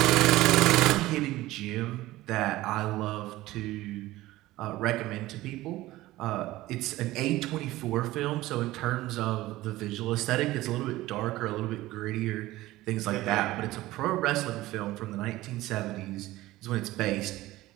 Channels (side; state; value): left; quieter; 17.3 dB